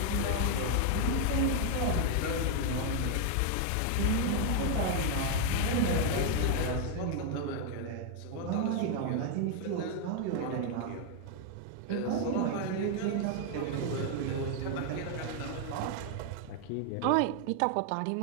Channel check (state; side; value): different; both; correlation 0.00